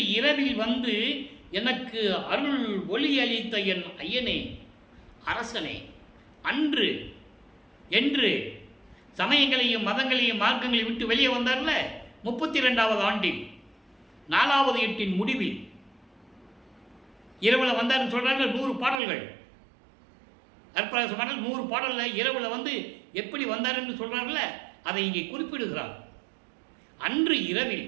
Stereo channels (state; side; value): drops out; left; at 18.9 s